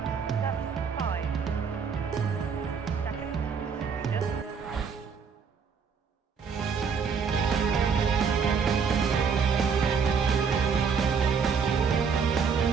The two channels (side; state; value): left; quieter; 6.1 dB